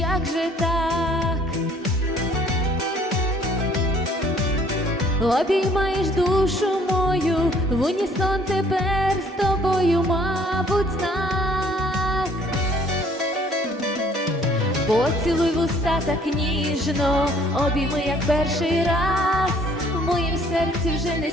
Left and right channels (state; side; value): normal; both; correlation 0.59